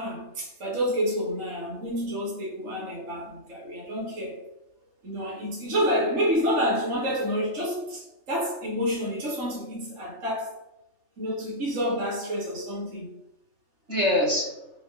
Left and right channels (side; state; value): left; late; 3.3 ms